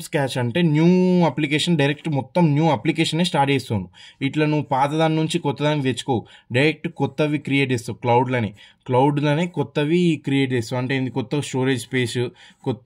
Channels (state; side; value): identical; both; correlation 1.00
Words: స్క్రాచ్ అంటే న్యూ అప్లికేషన్, డైరెక్ట్ మొత్తం న్యూ అప్లికేషనే స్టార్ట్ చేస్తావు. ఇట్లా నువ్వు పాత దాని నుంచి కొత్త దానికి తెచ్చుకోవు, డైరెక్ట్ కొత్తవి క్రియేట్ చేస్తావు. క్లౌడ్లోనే కొత్తవి క్రియేట్ చేస్తావు. అంటే కొత్త స్టోరేజ్ స్పేస్,